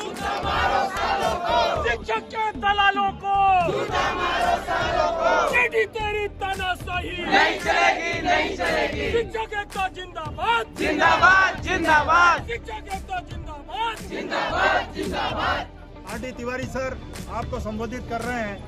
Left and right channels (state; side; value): identical; both; correlation 1.00